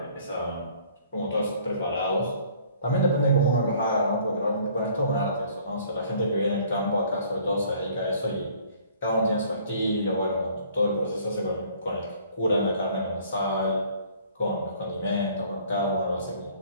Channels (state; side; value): inverted; both; correlation -0.56